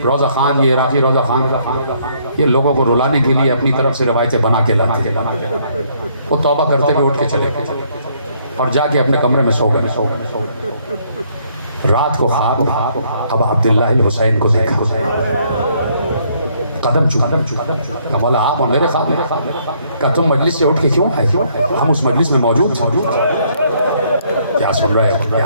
روزہ خان، یہ عراقی روزہ خان، یہ لوگوں کو رلانے کے لیے اپنی طرف سے روایتیں بنا کے لاتے ہیں۔ وہ توبہ کرتے ہوئے اٹھ کے چلے اور جا کے اپنے کمرے میں سو گئے۔ رات کو خواب ابا عبداللہ الحسین کو دیکھا، قدم چکا، مولا آپ میرے خواب میں، کہا تم مجلس سے اٹھ کے کیوں آئے؟ ہم اس مجلس میں موجود تھے۔ کیا سن رہے ہیں؟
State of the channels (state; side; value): inverted; both; correlation -0.68